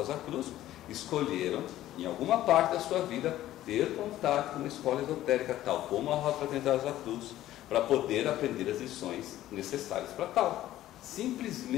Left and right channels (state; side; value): quieter; right; 13.9 dB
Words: Cruz, escolheram em alguma parte da sua vida, ter contato com uma escola esotérica, tal como a Rosa Fraternidade Rosa Cruz, para poder aprender as lições necessárias para tal.